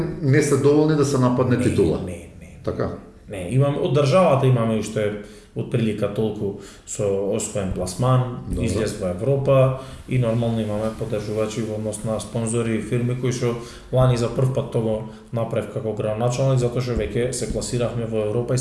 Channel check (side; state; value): both; identical; correlation 1.00